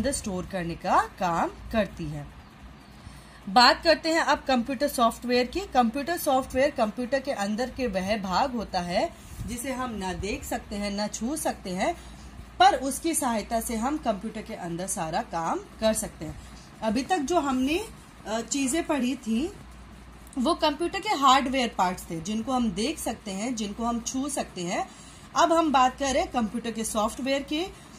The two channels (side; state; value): both; identical; correlation 1.00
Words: स्टोर करने का काम करती है। बात करते हैं अब कंप्यूटर सॉफ्टवेयर की। कंप्यूटर सॉफ्टवेयर कंप्यूटर के अंदर के वह भाग होता है जिसे हम न देख सकते हैं न छू सकते हैं, पर उसकी सहायता से हम कंप्यूटर के अंदर सारा काम कर सकते हैं। अभी तक जो हमने चीजें पढ़ी थी वो कंप्यूटर के हार्डवेयर पार्ट्स थे जिनको हम देख सकते हैं, जिनको हम छू सकते हैं। अब हम बात कर रहे हैं कंप्यूटर के सॉफ्टवेयर की।